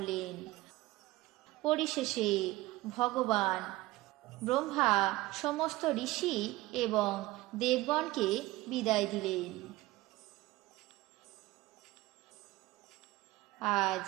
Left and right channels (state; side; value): quieter; left; 18.9 dB